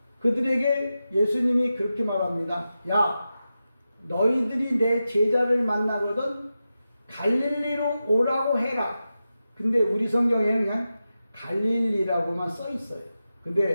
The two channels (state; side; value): inverted; both; correlation -0.92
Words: 그들에게 예수님이 그렇게 말합니다. 야, 너희들이 내 제자를 만나거든 갈릴리로 오라고 해라. 근데 우리 성경에는 그냥 갈릴리라고만 써 있어요.